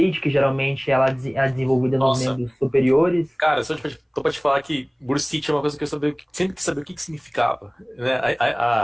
que geralmente ela é desenvolvida nos Nossa, membros superiores. cara, tô pra te falar que bursite é uma coisa que sempre quis saber o que que significava, né?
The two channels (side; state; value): both; identical; correlation 1.00